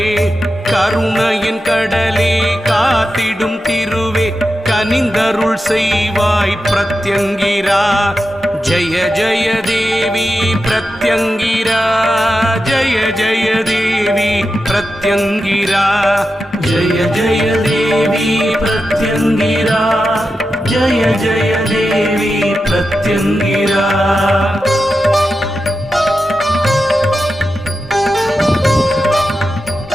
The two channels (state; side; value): normal; both; correlation 0.90